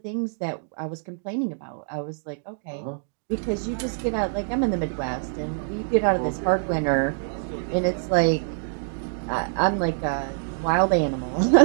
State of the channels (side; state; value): left; silent; digital silence